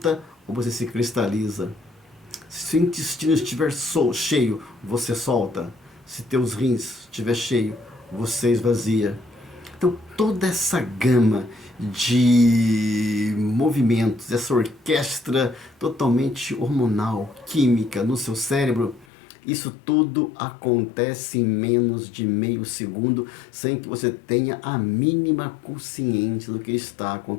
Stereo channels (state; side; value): drops out; right; at 19.1 s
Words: ou você se cristaliza. Se o intestino estiver cheio, você solta. Se teus rins estiver cheio, você esvazia. Então toda essa gama de movimentos, essa orquestra totalmente hormonal, química no seu cérebro, isso tudo acontece em menos de meio segundo, sem que você tenha a mínima consciência do que está